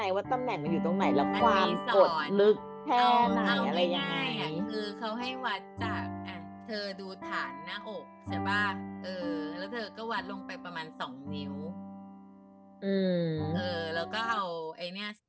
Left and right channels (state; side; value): identical; both; correlation 1.00